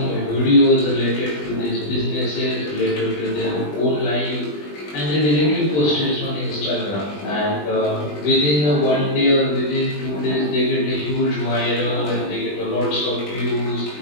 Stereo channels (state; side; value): late; right; 20 ms